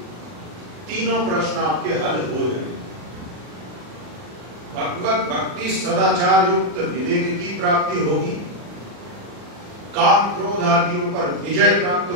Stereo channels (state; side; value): late; left; 39 ms